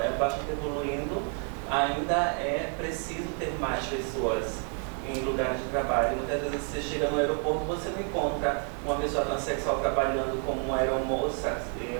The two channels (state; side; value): quieter; left; 39.4 dB